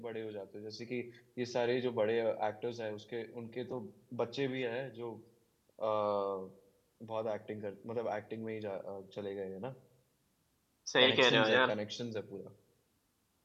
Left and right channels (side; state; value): both; identical; correlation 1.00